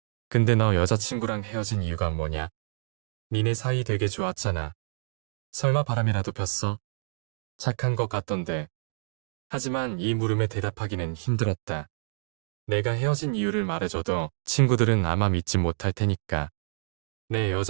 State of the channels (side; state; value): left; silent; digital silence